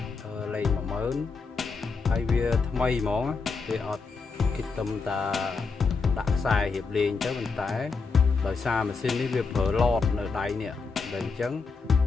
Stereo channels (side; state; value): right; quieter; 4.6 dB